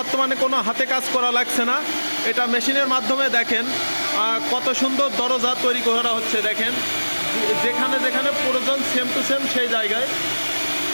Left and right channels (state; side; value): inverted; both; correlation -1.00